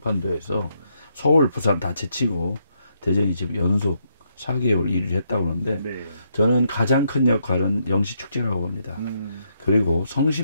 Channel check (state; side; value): inverted; both; correlation -0.77